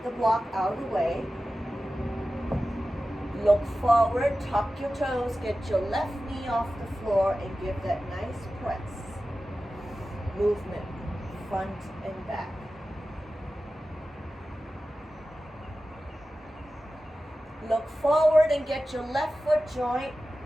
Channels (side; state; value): both; normal; correlation 0.94